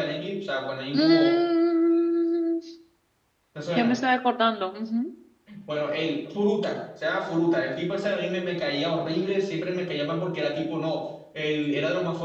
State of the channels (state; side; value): identical; both; correlation 1.00